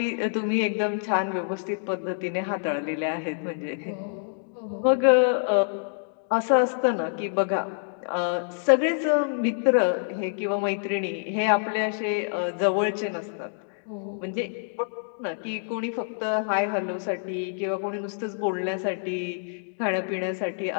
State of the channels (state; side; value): silent; right; digital silence